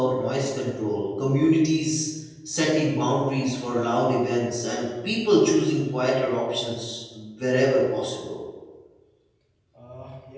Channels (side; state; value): both; identical; correlation 1.00